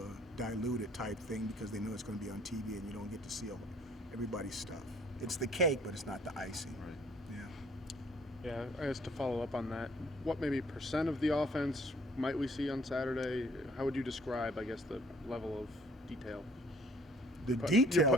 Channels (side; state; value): both; normal; correlation 0.59